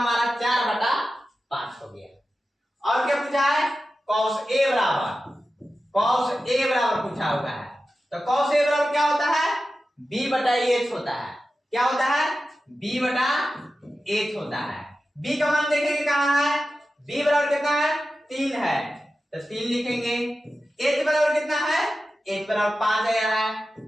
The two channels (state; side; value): normal; both; correlation 0.93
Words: 4/5 हो गया। और क्या पूछा है, cos a बराबर पूछा हुआ है, तो cos a बराबर क्या होता है b/h होता है। क्या होता है b/h होता है। b का मान देखेंगे कहां है, b बराबर कितना है 3 है, तो 3 लिखेंगे। h बराबर कितना है, h बराबर 5 आया है,